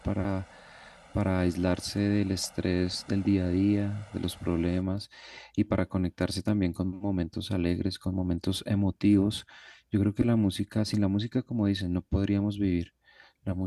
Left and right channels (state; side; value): identical; both; correlation 1.00